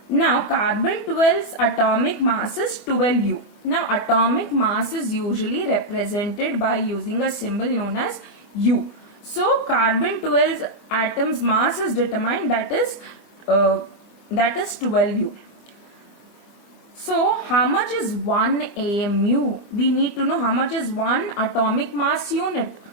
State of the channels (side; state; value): right; late; 25 ms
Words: Now carbon 12's atomic mass is 12U. Now atomic mass is usually represented by using a symbol known as U. So carbon 12's atom's mass is determined, that is 12U. So how much is 1 AMU? We need to know how much is 1 atomic mass unit.